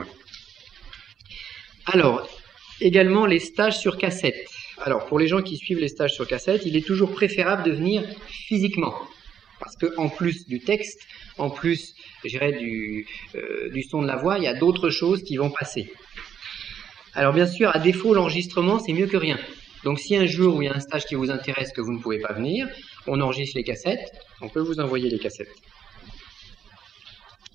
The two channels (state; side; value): quieter; left; 8.5 dB